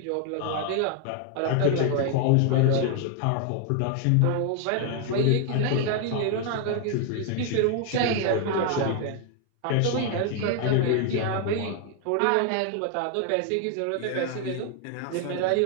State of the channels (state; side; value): different; both; correlation 0.00